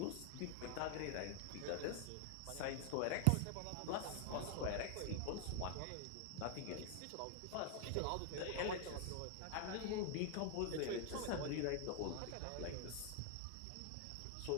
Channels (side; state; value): both; different; correlation 0.00